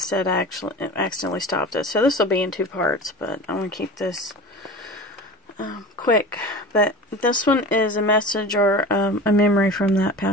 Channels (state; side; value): normal; both; correlation 0.34